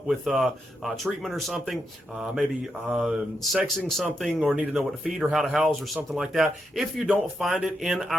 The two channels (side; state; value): both; normal; correlation 0.83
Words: with treatment or something, maybe sexing something, or need to know what to feed or how to house or something like that. If you don't find it in